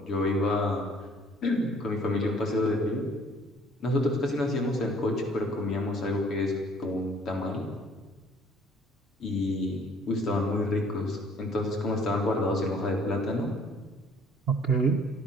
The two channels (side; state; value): both; normal; correlation 0.57